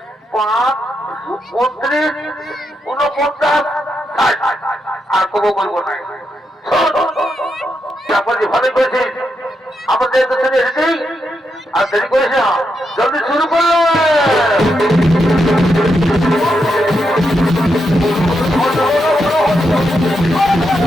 5 29 49 আর কবো বলবো না তারপর যে ভালো করেছিস আমাদের তো ছেলে এসেছেই আর দেরি করিস না জলদি শুরু করলো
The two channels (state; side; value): normal; both; correlation 0.83